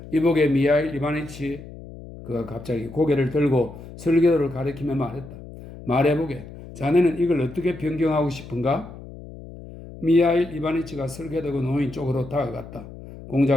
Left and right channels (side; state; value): left; noise; hum, 15 dB below the sound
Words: 이보게 미하일 이바니치. 그가 갑자기 고개를 들고 설계도를 가리키며 말했다. 말해보게. 자네는 이걸 어떻게 변경하고 싶은가? 미하일 이바니치가 설계도가 놓인 쪽으로 다가갔다.